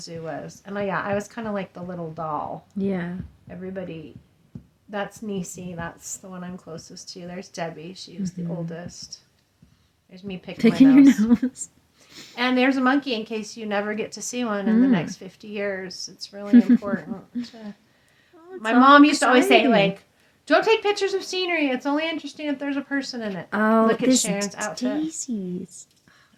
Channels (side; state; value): both; identical; correlation 1.00